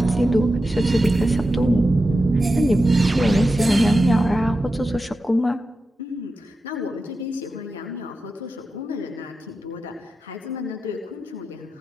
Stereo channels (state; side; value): normal; both; correlation 0.91